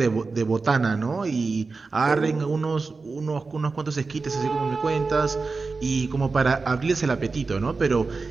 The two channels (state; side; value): quieter; left; 4.2 dB